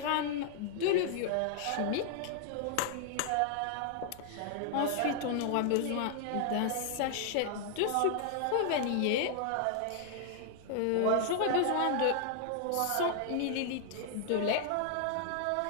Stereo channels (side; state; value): both; different; correlation 0.00